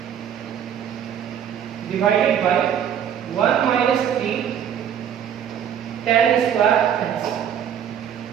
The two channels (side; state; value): left; quieter; 9.1 dB